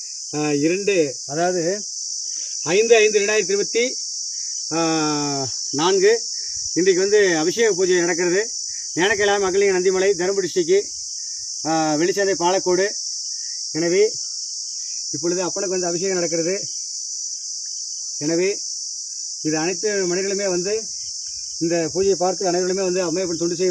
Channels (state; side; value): identical; both; correlation 1.00